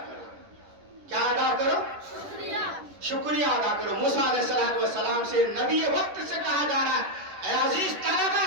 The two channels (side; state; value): left; late; 11 ms